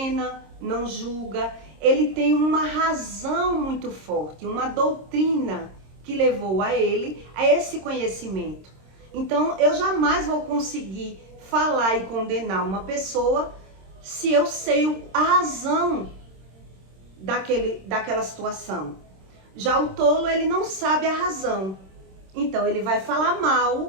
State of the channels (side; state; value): left; late; 26 ms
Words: não julga. Ele tem uma razão muito forte, uma doutrina que levou a ele a esse conhecimento. Então, eu jamais vou conseguir falar e condenar uma pessoa se eu sei a razão daquela situação. Já o tolo, ele não sabe a razão. Então, ele vai falar